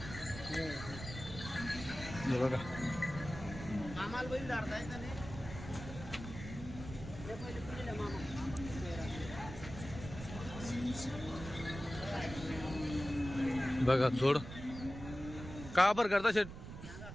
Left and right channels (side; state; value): right; noise; rumble, 11 dB below the sound